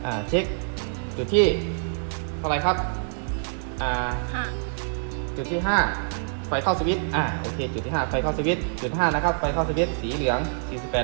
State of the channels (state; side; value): silent; left; 59 dB below the other